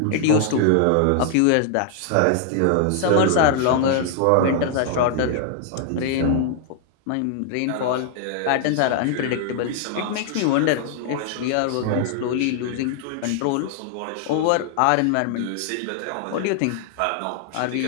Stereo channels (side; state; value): both; different; correlation 0.00